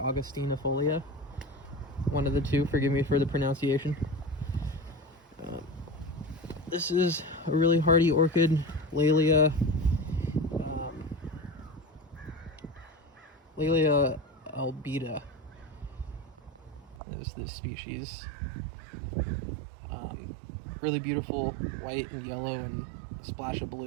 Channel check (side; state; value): left; drops out; at 17.0 s